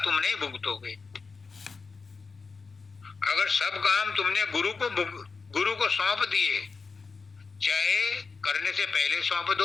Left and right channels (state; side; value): quieter; right; 4.6 dB